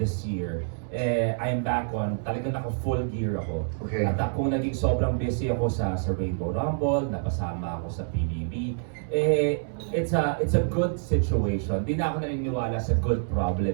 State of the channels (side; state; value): left; silent; digital silence